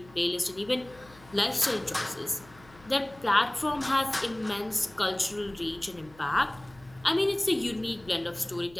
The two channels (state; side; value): noise; left; hum, 24 dB below the sound